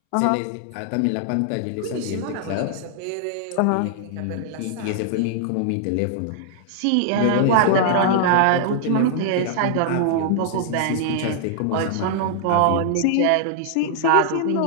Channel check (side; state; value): both; different; correlation -0.01